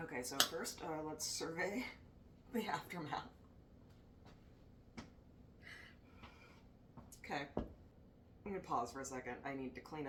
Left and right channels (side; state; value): both; identical; correlation 1.00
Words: Okay, so first, let's survey the aftermath. Okay. I'm gonna pause for a second. I need to clean